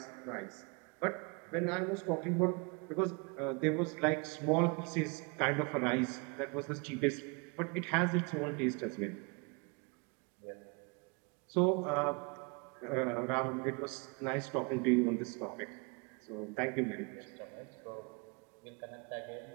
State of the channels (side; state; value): left; quieter; 31.5 dB